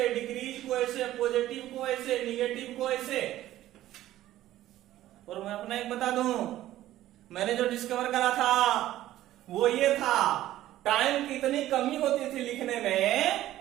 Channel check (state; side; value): quieter; left; 14.1 dB